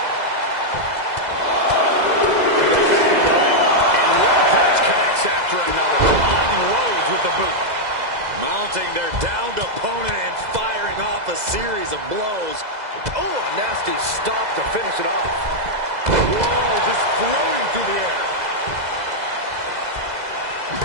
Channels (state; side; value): late; left; 2.0 ms